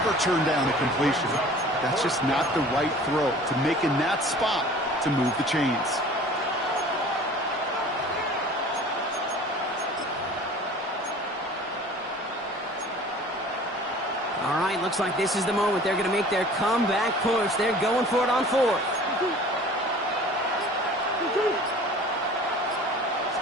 turn down a completion. That's just not the right throw to make in that spot to move the chains. All right, looks like this is the moment. They're going to make their comeback push. They're going for it on 4th.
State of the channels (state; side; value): normal; both; correlation 0.45